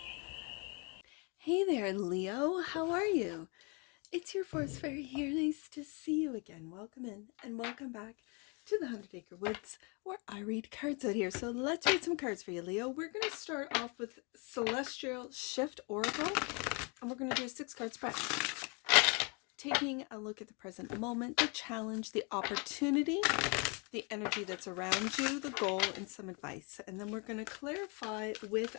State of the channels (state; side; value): quieter; right; 32.7 dB